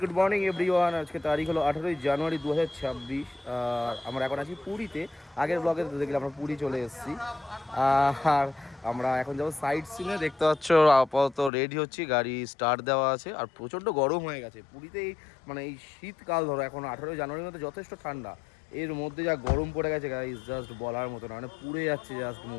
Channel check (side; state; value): right; drops out; at 11.5 s